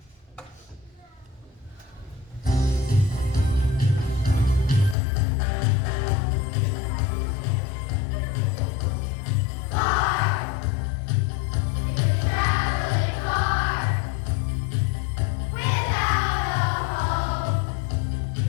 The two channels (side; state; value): right; drops out; at 5.0 s